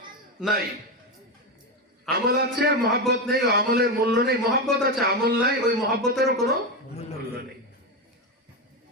নাই। আমল আছে, মহব্বত নেই, ও আমলের মূল্য নেই। মহব্বত আছে, আমল নাই, ওই মহব্বতেরও কোনো মূল্য নেই।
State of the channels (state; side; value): normal; both; correlation 0.12